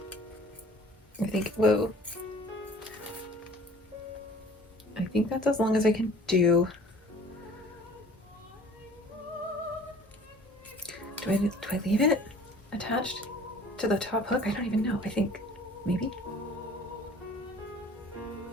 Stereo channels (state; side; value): normal; both; correlation 0.50